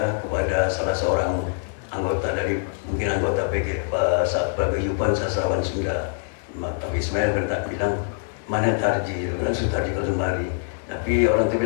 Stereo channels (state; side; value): silent; right; digital silence